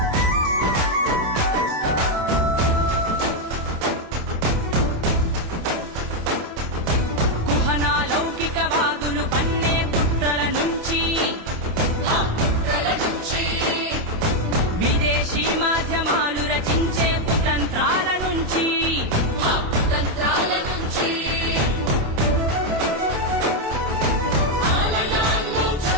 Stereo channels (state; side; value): late; left; 27 ms